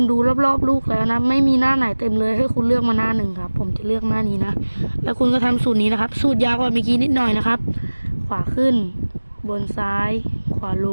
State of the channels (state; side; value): inverted; both; correlation -1.00